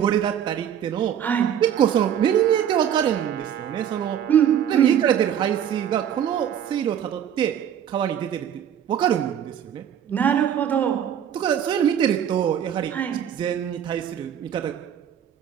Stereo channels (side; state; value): left; quieter; 9.3 dB